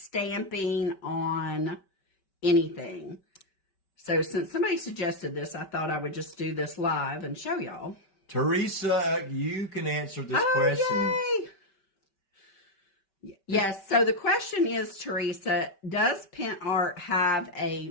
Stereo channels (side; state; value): right; late; 5.2 ms